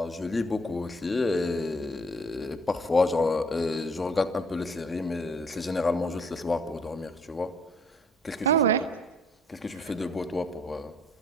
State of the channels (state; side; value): normal; both; correlation 0.60